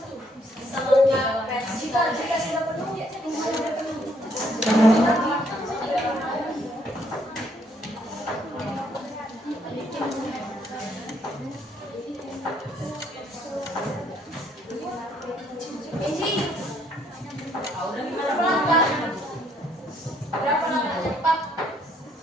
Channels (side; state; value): both; normal; correlation 0.68